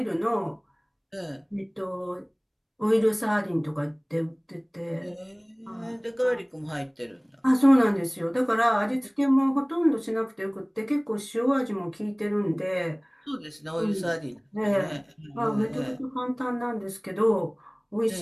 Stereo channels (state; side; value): identical; both; correlation 1.00